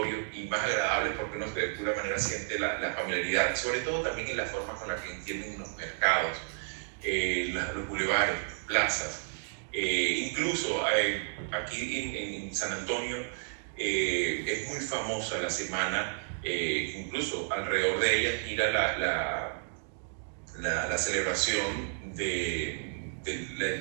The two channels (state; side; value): silent; left; digital silence